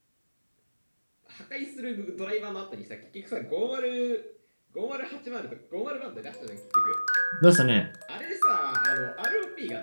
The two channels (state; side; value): inverted; both; correlation -1.00